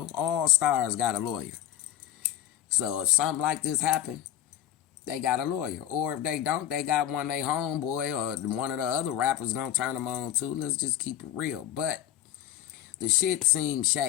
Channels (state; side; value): quieter; right; 11.8 dB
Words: All stars got a lawyer. So if something like this happened, they got a lawyer. Or if they don't, they got one they homeboy or one of the other rappers gonna turn them on too. Let's just keep it real. But the shit seems